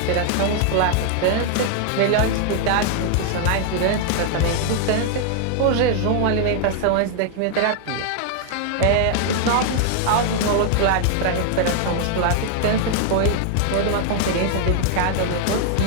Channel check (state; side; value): different; both; correlation 0.00